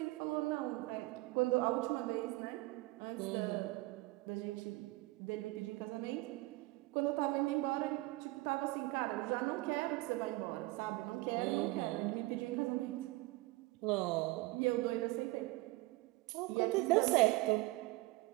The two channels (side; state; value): left; quieter; 21.3 dB